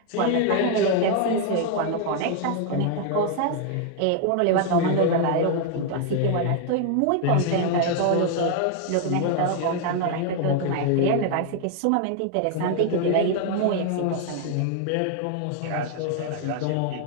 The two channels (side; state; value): both; different; correlation 0.00